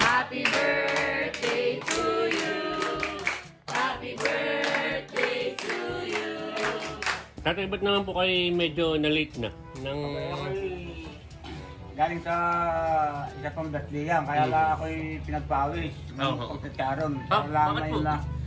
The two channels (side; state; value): both; identical; correlation 1.00